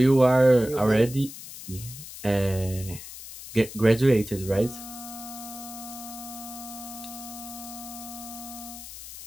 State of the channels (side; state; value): left; noise; hiss, 13 dB below the sound